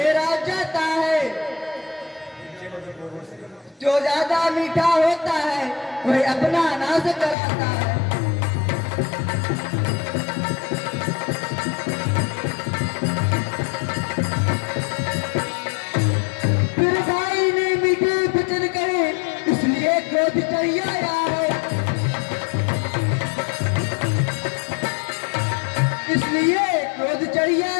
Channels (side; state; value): right; drops out; at 7.4 s